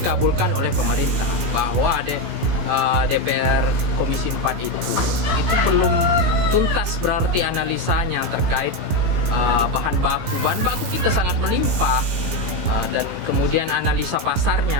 oleh pemerintah bahwa ada DPR Komisi 4 itu belum tuntas berarti analisanya terkait bahan baku kita sangat melimpah. Dan kemudian analisa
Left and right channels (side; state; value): left; late; 17 ms